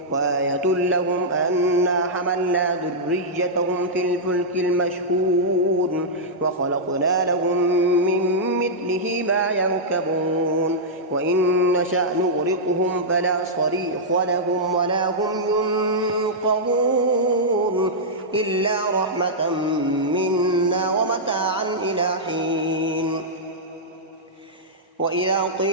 وآية لهم أنا حملنا ذريتهم في الفلك المشحون وخلقنا لهم من مثله ما يركبون وإن نشأ نغرقهم فلا صريخ لهم ولا هم ينقذون إلا رحمة منا ومتاعا إلى حين وإذا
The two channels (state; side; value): normal; both; correlation -0.10